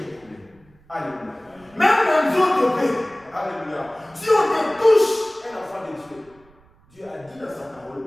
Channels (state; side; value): noise; right; rumble, 30 dB below the sound